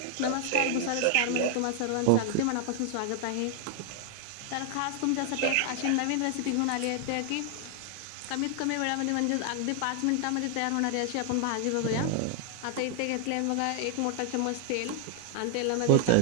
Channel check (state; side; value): different; both; correlation 0.00